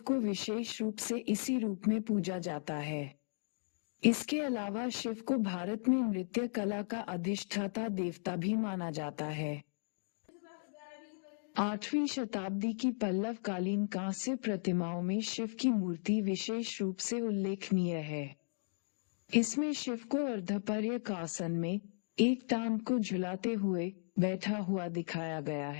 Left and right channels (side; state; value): right; silent; digital silence